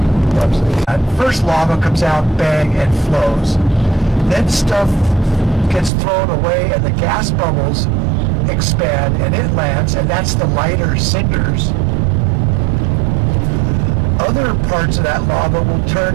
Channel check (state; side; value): drops out; left; at 5.9 s